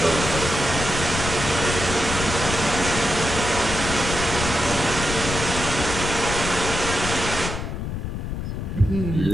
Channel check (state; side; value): noise; left; rumble, 5 dB below the sound